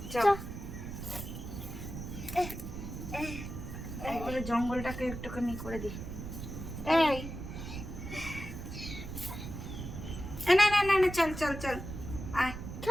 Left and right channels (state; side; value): noise; right; rumble, 8 dB below the sound